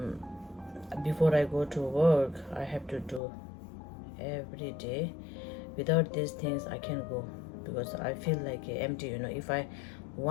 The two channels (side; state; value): right; drops out; at 3.2 s